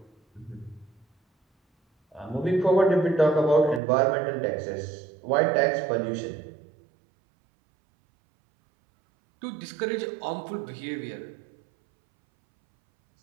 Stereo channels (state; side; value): drops out; left; at 3.8 s